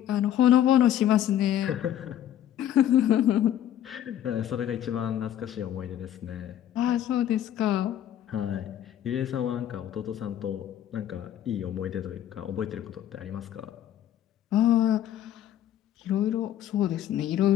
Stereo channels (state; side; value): quieter; right; 11.1 dB